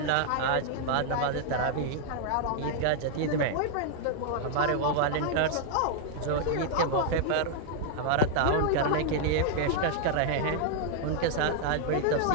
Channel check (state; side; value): different; both; correlation 0.00